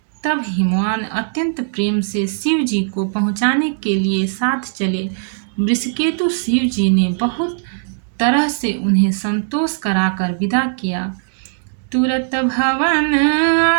तब हिमवान अत्यंत प्रेम से शिव जी को पहुँचाने के लिए साथ चले। वृषकेतु शिव जी ने बहुत तरह से उन्हें संतोष कराकर विदा किया। तुरत भवन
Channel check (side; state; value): left; silent; digital silence